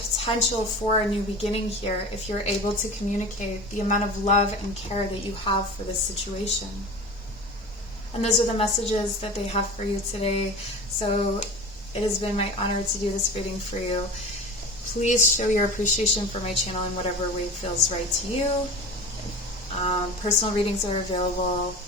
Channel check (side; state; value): both; normal; correlation 0.33